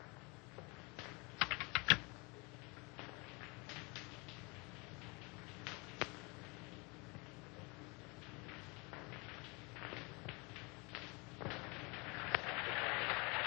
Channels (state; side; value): quieter; right; 28.8 dB